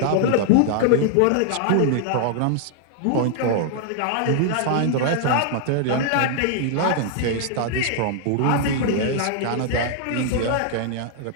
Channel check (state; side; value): different; both; correlation -0.01